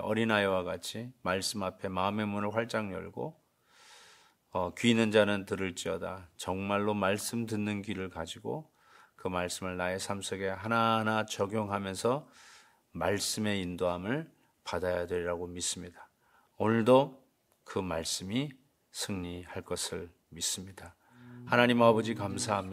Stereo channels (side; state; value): both; identical; correlation 1.00